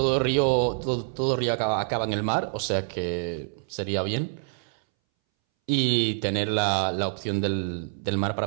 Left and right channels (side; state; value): left; silent; 61 dB below the other